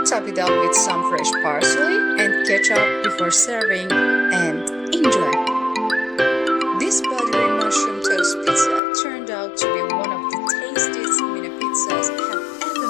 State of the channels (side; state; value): right; drops out; at 8.8 s